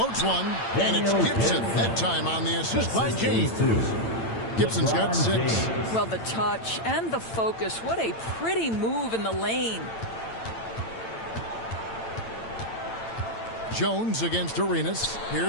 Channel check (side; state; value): right; late; 8.9 ms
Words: one, and it's Gibson. That time on the assist by James. Gibson's got 6. Well, the touch and the focus. What a pretty move in the lane. Jones against Arenas.